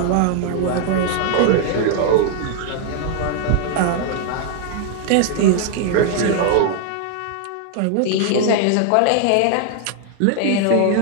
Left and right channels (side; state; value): both; different; correlation 0.00